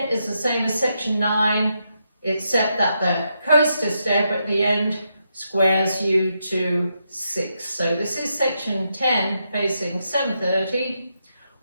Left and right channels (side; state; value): both; inverted; correlation -0.82